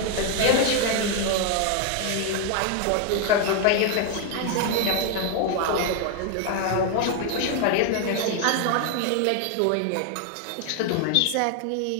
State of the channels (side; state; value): both; different; correlation 0.01